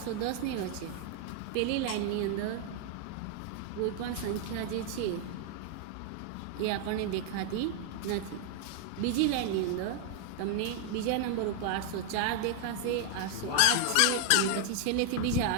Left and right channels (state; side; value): different; both; correlation -0.01